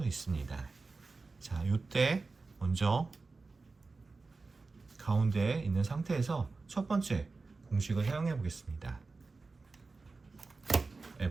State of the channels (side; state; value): left; quieter; 3.9 dB